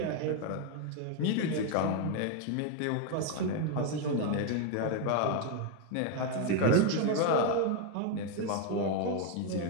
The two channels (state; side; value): different; both; correlation 0.01